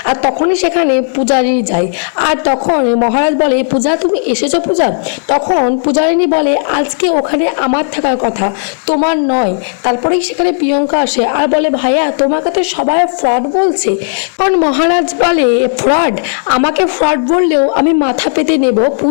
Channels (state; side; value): silent; right; digital silence